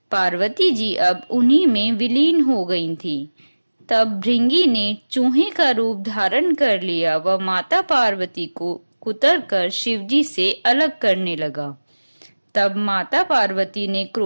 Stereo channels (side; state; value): both; inverted; correlation -1.00